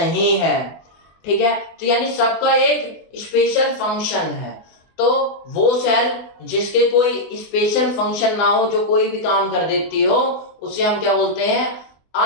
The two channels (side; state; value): right; late; 24 ms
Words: है, ठीक है। तो यानी सबका एक स्पेशल फंक्शन है, तो वो सेल जिसके कोई स्पेशल फंक्शन ना हो, जो कोई भी काम कर देती हो, उसे हम क्या बोलते हैं,